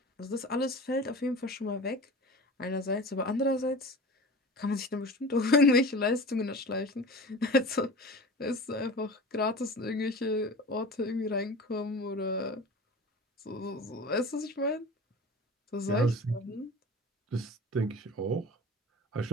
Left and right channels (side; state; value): both; normal; correlation 0.36